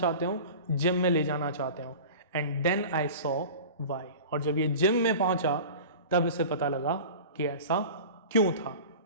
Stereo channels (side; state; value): both; inverted; correlation -0.36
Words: हो, जिम में ले जाना चाहते हो. And then I saw why, और जब ये जिम में पहुंचा तब इसे पता लगा कि ऐसा क्यों था.